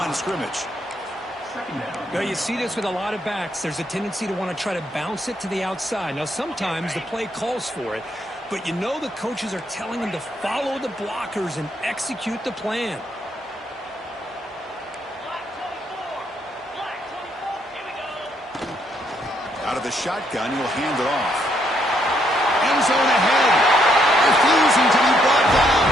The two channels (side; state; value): both; normal; correlation 0.73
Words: of scrimmage. Now, you see this with a lot of backs. There's a tendency to want to try to bounce it to the outside. Now, sometimes the play calls for it, but you know the coaches are telling them to follow the blockers and execute the plan. Out of the shotgun, he'll hand it off. End zone ahead. Refusing to be brought down.